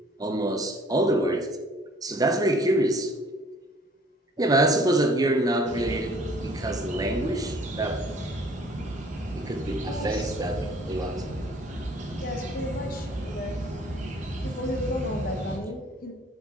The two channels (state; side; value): normal; both; correlation 0.55